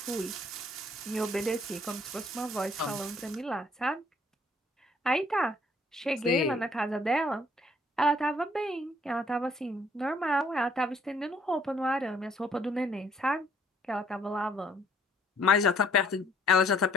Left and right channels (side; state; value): both; normal; correlation 0.63